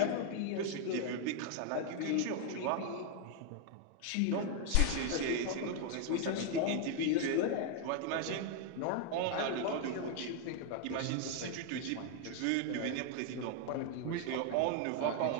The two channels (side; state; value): both; different; correlation 0.00